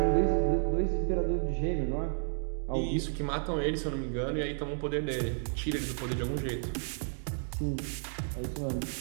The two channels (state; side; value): silent; left; digital silence